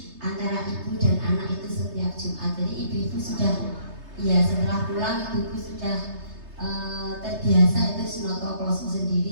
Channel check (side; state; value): left; late; 3.3 ms